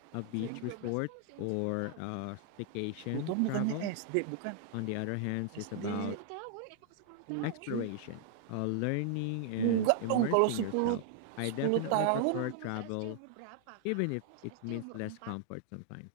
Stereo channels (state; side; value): different; both; correlation -0.01